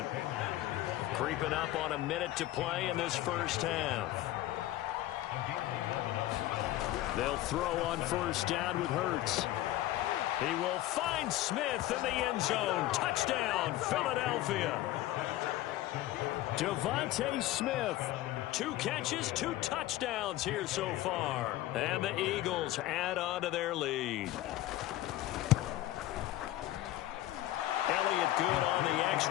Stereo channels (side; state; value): right; quieter; 15.1 dB